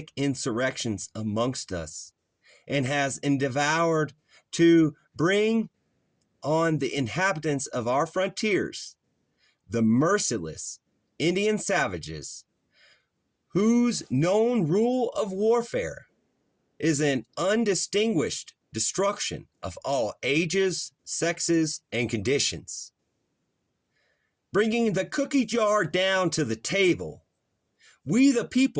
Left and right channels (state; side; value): identical; both; correlation 1.00